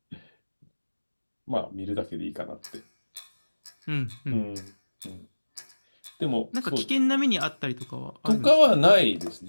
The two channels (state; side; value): inverted; both; correlation -1.00